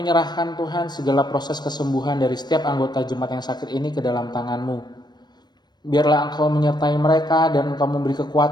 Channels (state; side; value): late; right; 0.21 ms